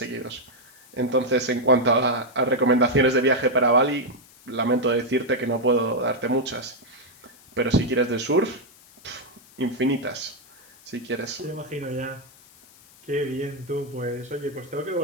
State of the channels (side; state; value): left; noise; hiss, 25 dB below the sound